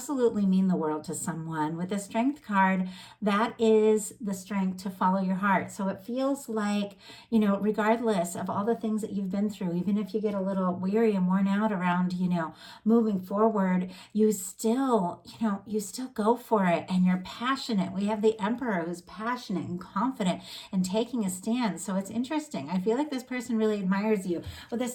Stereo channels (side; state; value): both; identical; correlation 1.00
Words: mean the world to someone. With the Strength card, that is the strength to follow your heart. So it feels like, regardless of all the things that you've been through, even if you get a little weary and worn out around, moving forward, you still go for it and you're passionate. We have the Emperor who's passionate and confident and taking a stand. So it's interesting. I feel like this person really admires you. With the